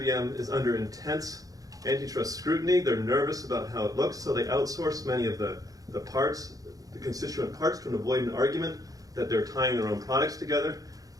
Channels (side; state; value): left; late; 0.17 ms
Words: is under intense antitrust scrutiny. They're nervous about how it looks, so they outsource many of the parts, the constituent parts, to avoid an argument that they're tying their own products together.